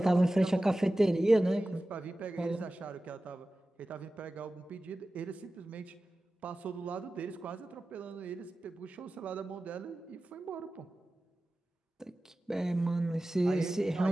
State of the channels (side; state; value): both; normal; correlation 0.95